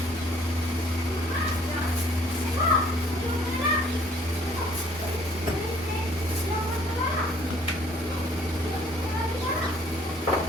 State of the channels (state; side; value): normal; both; correlation 0.59